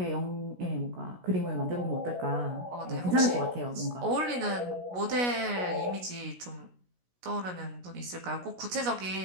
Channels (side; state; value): left; late; 16 ms